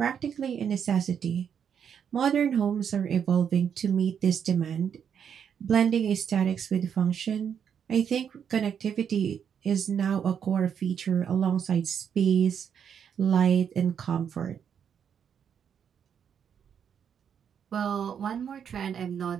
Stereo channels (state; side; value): quieter; left; 7.9 dB